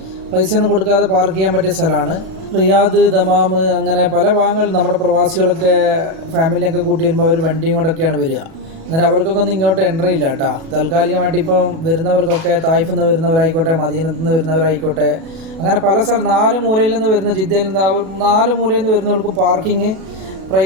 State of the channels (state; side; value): late; left; 37 ms